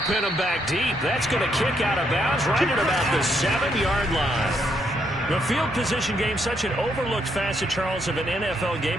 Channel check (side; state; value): both; normal; correlation 0.75